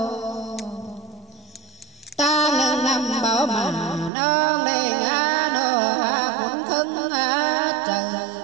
ta nâng năm bảo mà nông đề ngã nô cũng khưng trời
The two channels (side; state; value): left; drops out; at 4.1 s